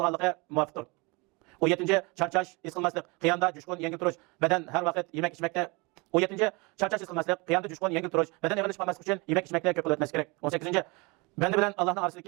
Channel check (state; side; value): quieter; left; 27.4 dB